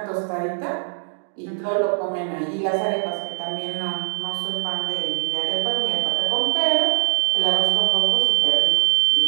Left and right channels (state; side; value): silent; left; digital silence